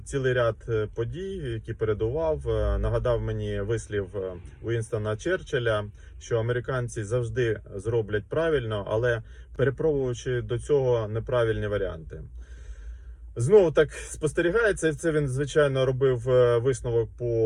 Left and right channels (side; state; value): both; identical; correlation 1.00